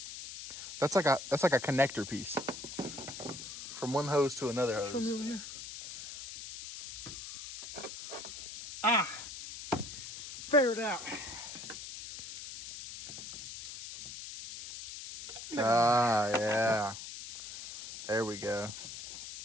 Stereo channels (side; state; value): left; noise; hiss, 10 dB below the sound